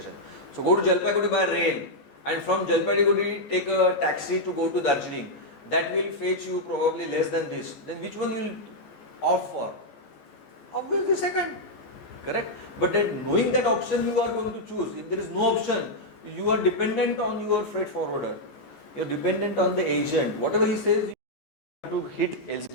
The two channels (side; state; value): right; late; 14 ms